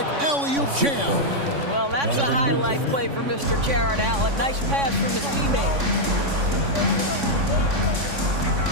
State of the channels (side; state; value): left; late; 3.6 ms